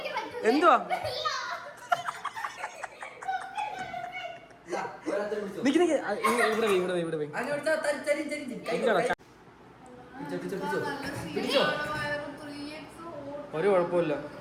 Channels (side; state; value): both; identical; correlation 1.00